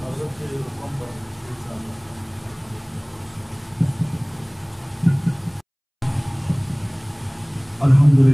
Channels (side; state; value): both; identical; correlation 1.00